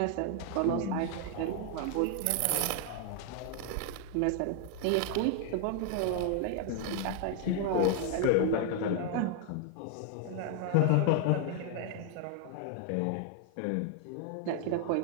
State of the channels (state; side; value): different; both; correlation 0.00